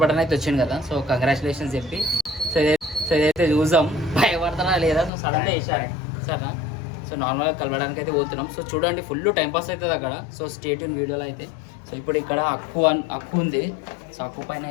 బటన్ అయితే వచ్చింది కదా, సో కంగ్రాచులేషన్స్ చెప్పి సో ఇదైతే చూసాం భయపడతానా లేదా. సో సడన్గా వేసాను సరేనా. సో నార్మల్గా కలవడానికి అయితే పోతున్నాం. సో చూడండి, ఫుల్ టైం పాస్ అవుతుంది అక్కడ. సో స్టేట్ ఇన్ వీడియోలో అయితే. సో ఇప్పుడు ఇక్కడ అక్కు ఉంది. సో అక్కు పైన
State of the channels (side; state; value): right; drops out; at 5.1 s